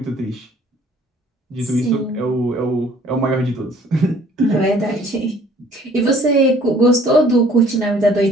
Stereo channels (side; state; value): both; normal; correlation 0.56